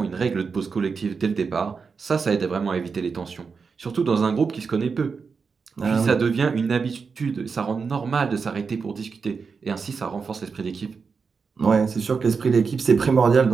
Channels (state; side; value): quieter; left; 5.3 dB